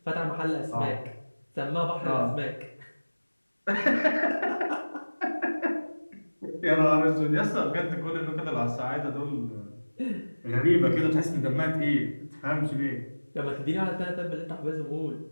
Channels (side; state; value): both; inverted; correlation -1.00